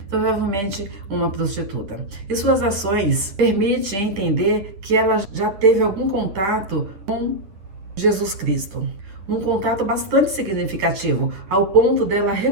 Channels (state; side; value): late; left; 10 ms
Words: provavelmente uma prostituta. E suas ações permitem entender que ela já teve algum contato com Jesus Cristo. Um contato bastante significativo, ao ponto dela